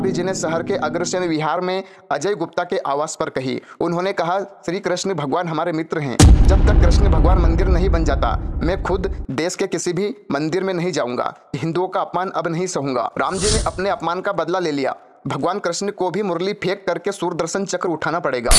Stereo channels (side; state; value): both; identical; correlation 1.00